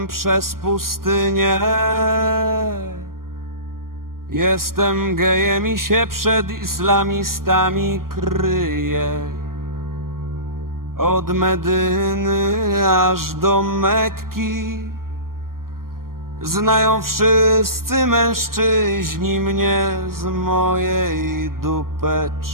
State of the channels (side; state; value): left; late; 0.91 ms